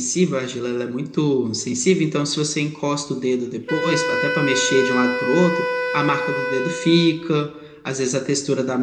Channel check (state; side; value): identical; both; correlation 1.00